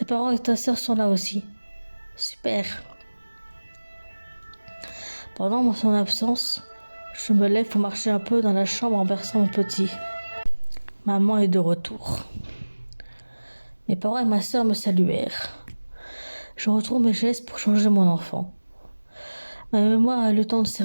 parents et ta sœur sont là aussi. Super. Pendant son absence, je me lève pour marcher un peu dans la chambre en berçant mon petit. Maman est de retour. Mes parents et ma sœur me saluèrent. Je retrouve mes gestes pour changer mon enfant. Ma mémoire a eu le temps de se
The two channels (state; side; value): inverted; both; correlation -1.00